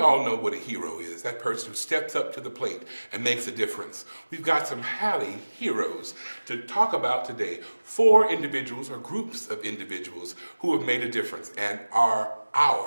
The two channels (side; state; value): both; inverted; correlation -1.00